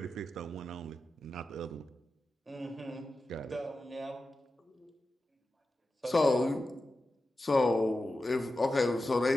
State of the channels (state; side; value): normal; both; correlation 0.92